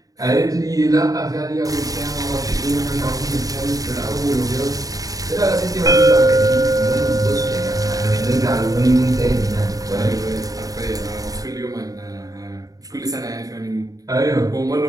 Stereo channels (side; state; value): left; late; 0.17 ms